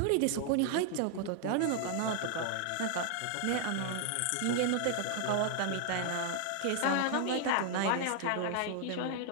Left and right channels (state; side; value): different; both; correlation 0.00